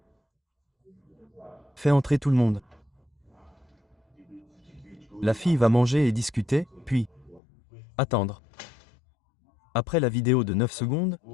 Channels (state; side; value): drops out; right; at 7.4 s